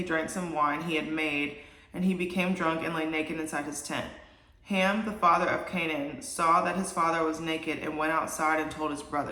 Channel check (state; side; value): identical; both; correlation 1.00